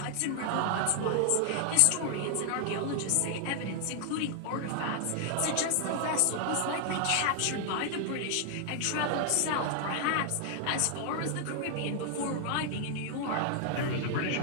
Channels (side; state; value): both; different; correlation 0.00